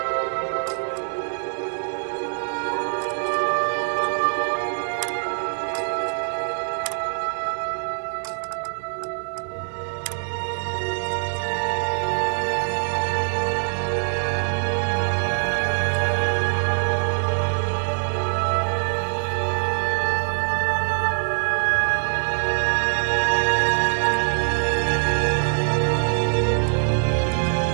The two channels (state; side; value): silent; left; 58 dB below the other